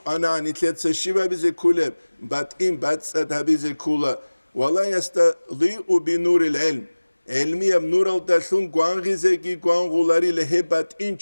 თლეცე შიბაბიზე კულებ ბატიმ ბატსა დაბიზე კულა ვალა იასტა ლიუ ბინურილ ილმ علمي بنور الدلون قانغيزي قانغولاري لهبات إن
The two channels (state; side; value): inverted; both; correlation -1.00